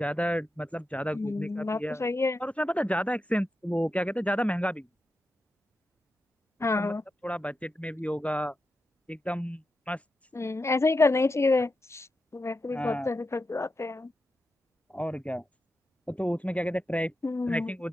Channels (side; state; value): both; normal; correlation 0.88